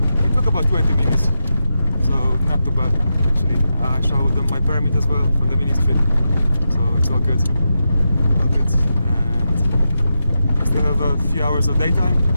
It took about 20 minutes, so not too bad actually. I showed them my permit as well from the ministry, so it's all good. All good. And I still have a few hours of daytime,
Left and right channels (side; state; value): both; inverted; correlation -0.88